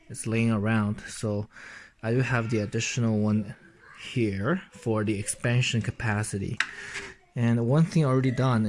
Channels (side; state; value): both; identical; correlation 1.00